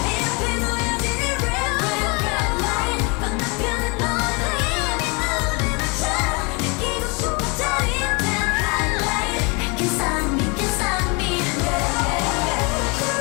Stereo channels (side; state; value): right; quieter; 30.3 dB